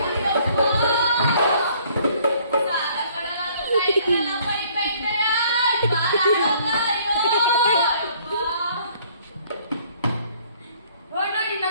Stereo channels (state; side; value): inverted; both; correlation -0.60